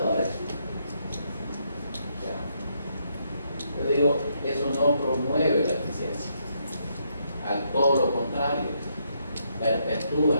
Yo digo, eso no promueve la eficiencia, al todo lo contrario, perpetúa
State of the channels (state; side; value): inverted; both; correlation -0.76